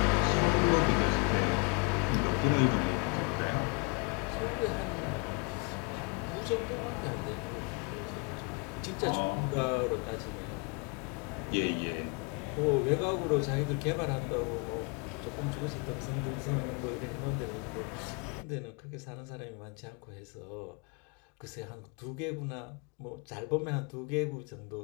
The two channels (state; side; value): quieter; right; 33.0 dB